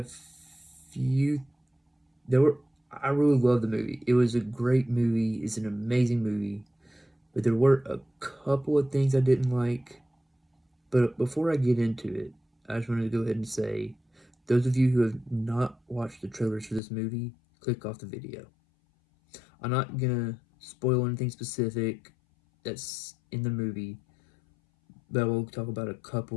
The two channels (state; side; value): drops out; right; at 16.8 s